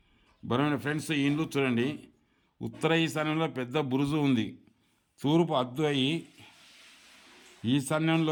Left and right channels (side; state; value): both; identical; correlation 1.00